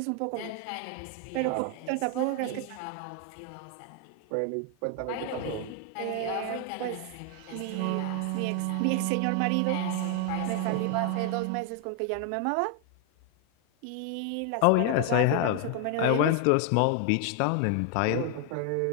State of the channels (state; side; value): different; both; correlation 0.00